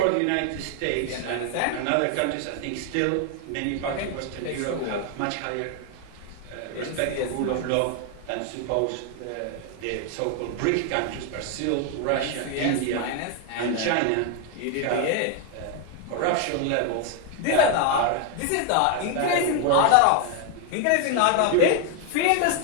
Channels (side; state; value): both; different; correlation 0.01